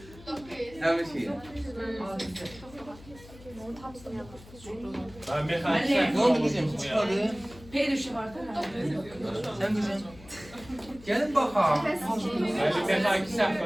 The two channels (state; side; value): noise; left; hum, 20 dB below the sound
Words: dəqiqə. Her şey. Ben mekanik Ne oldu kızım? Çıkadı. Perişi var da. Sen kızım. Gelin bakalım. Ben mekanik